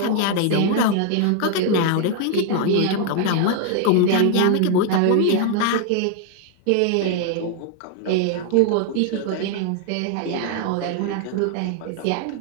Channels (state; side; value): different; both; correlation 0.00